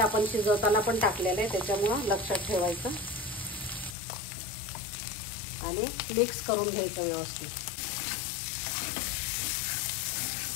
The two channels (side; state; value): right; drops out; at 4.0 s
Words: आपण शिजवताना पण टाकलेलं आहे, त्याच्यामुळं लक्षात ठेवायचं। आणि मिक्स करून घ्यायचं व्यवस्थित।